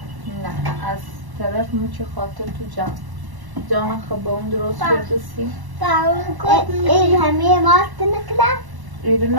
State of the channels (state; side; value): late; left; 1.0 ms